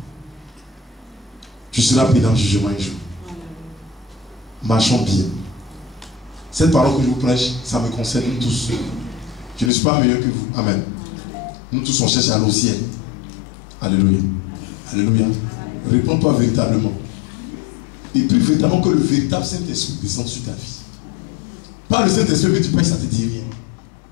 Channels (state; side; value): drops out; right; at 9.7 s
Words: Tu seras pris dans le jugement un jour. Marchons bien. Cette parole que je vous prêche, ça me concerne tous. Je ne suis pas meilleur que vous. Amen. Nous tous on cherche à aller au ciel. Alléluia. Alléluia. Réponds-toi véritablement. Et puis véritablement que le véritable Saint-Esprit descende sur ta vie. Pas le Saint-Esprit que tu prêches, ça ne te dit rien.